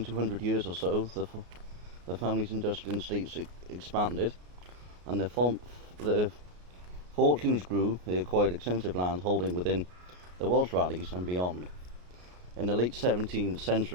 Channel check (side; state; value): left; late; 33 ms